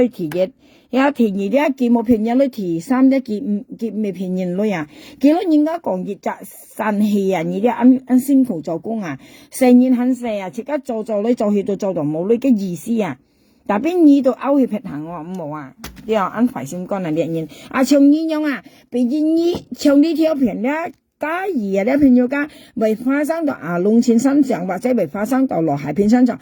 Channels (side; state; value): both; identical; correlation 1.00